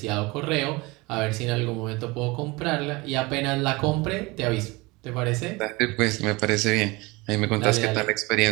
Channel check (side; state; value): left; quieter; 24.0 dB